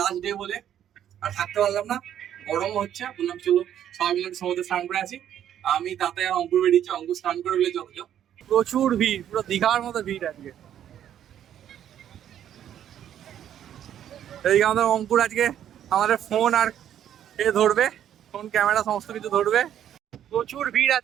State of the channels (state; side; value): quieter; left; 10.4 dB